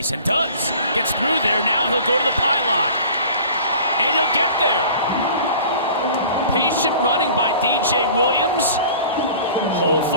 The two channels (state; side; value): inverted; both; correlation -0.45